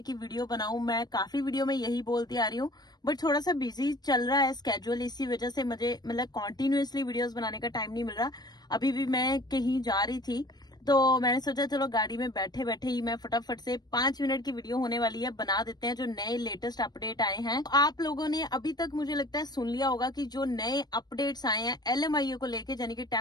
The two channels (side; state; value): right; late; 0.19 ms